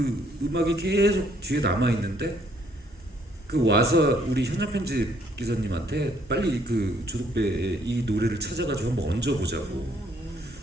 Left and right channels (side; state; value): both; normal; correlation 0.66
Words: 음악이 계속 뒤에 남아 있는데 그 와서 우리 현장 편집 기사님한테 빨리 그 조덕배의 이 노래를 찾아가지고 한번 얹어보자고.